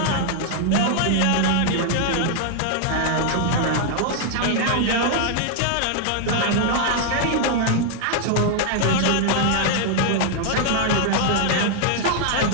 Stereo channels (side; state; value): both; different; correlation 0.00